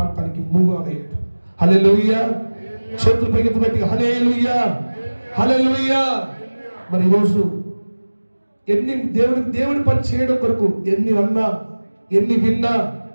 మూవ్ అయ్యాడు. హల్లెలూయా, చేతులు పైకి గట్టిగా హల్లెలూయా, హల్లెలూయా. మరి ఈరోజు ఎన్ని దేవుడి పని చేయడం కొరకు ఎన్ని అన్నా ఎన్ని విన్నా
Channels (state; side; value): inverted; both; correlation -1.00